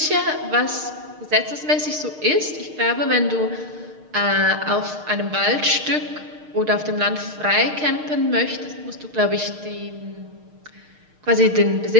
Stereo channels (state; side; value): late; left; 6.5 ms